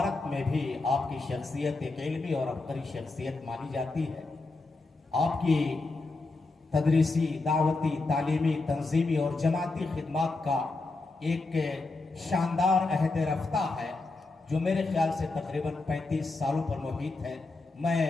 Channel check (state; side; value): quieter; right; 3.4 dB